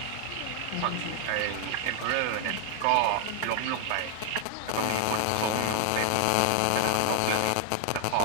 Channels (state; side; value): different; both; correlation 0.00